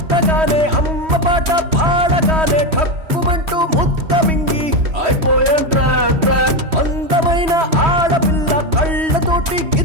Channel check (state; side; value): late; left; 3.1 ms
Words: అమ్మ పాట పాడగానే ఠక్కుమంటూ ముద్ద మింగి అయిపోయాను ట్రాప్ ట్రాప్ అందమైన ఆడపిల్ల కళ్ళతోటి